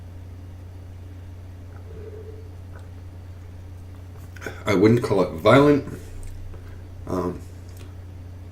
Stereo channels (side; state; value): both; identical; correlation 1.00